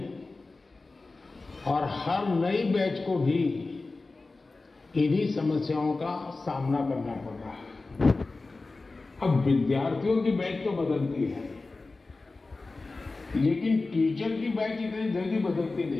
और हर नई बैच को भी इन्हीं समस्याओं का सामना करना पड़ रहा है। अब विद्यार्थियों की बैच तो बदलती है, लेकिन टीचर की बैच इतनी जल्दी बदलती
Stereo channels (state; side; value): quieter; right; 3.5 dB